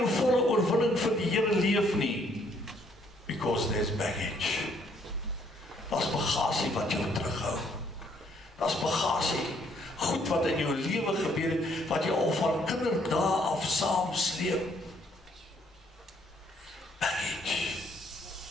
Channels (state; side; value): normal; both; correlation 0.67